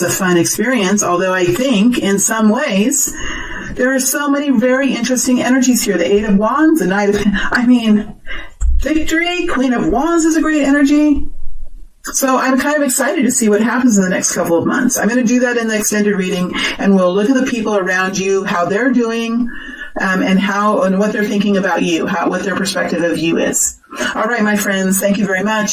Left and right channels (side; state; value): both; identical; correlation 1.00